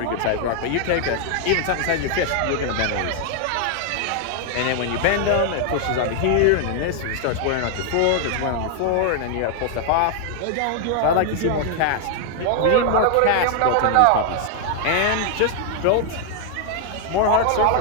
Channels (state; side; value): different; both; correlation 0.00